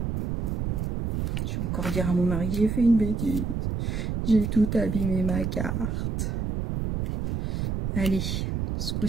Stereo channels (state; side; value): noise; right; rumble, 2 dB below the sound